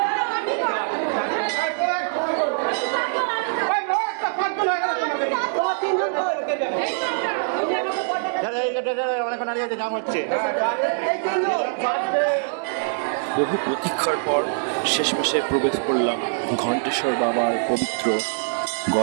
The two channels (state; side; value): silent; left; digital silence